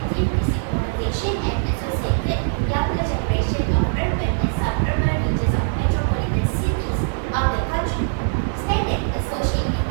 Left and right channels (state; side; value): silent; left; digital silence